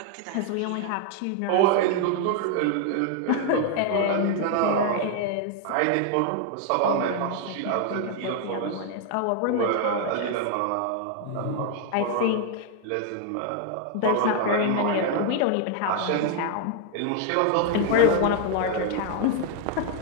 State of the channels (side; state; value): both; different; correlation 0.00